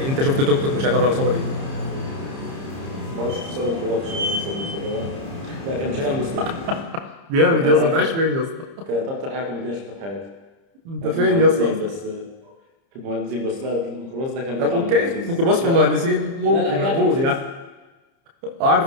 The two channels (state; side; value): late; left; 30 ms